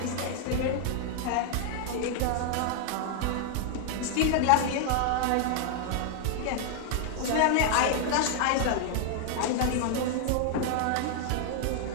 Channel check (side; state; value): both; different; correlation 0.00